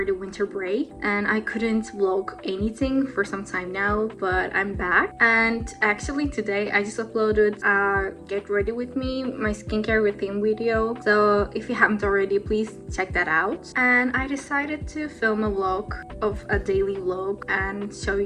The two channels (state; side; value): identical; both; correlation 1.00